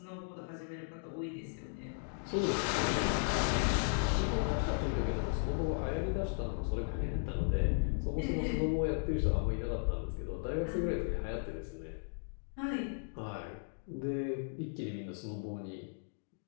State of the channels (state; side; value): silent; right; digital silence